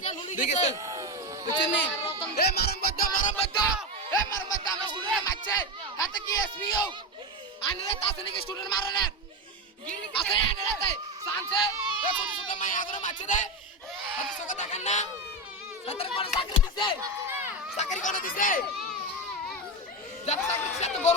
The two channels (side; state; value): both; normal; correlation 0.15